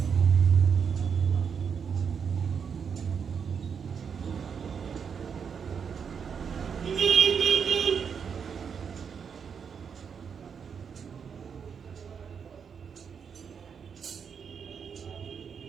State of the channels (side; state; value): left; quieter; 6.8 dB